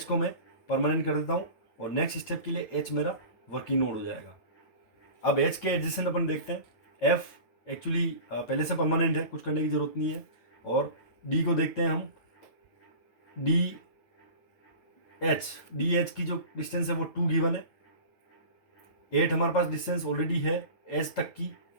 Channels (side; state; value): right; late; 9.1 ms